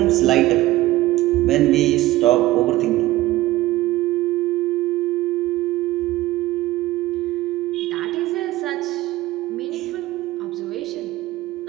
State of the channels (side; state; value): left; quieter; 17.0 dB